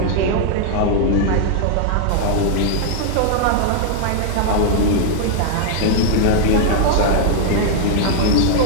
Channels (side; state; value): both; different; correlation -0.01